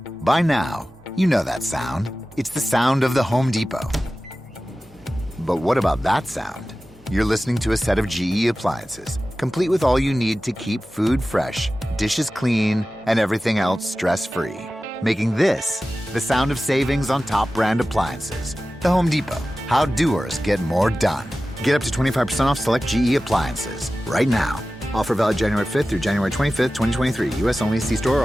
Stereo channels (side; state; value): both; normal; correlation 0.95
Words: By now, you know that sound. It's the sound of the Home Depot. But what about that sound? You're listening to a set of GE appliances, complete with all you need to keep food fresh, dishes clean, and everything else stress-free. Making this the sound of savings on top brand appliances. The Home Depot. How doers get more done. Get up to 25% off select GE appliances right now. Offer valid January 5th through January 25th, 2023. U.S. only. See store or